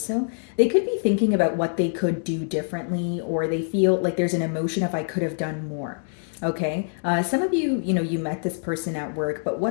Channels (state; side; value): silent; right; 62 dB below the other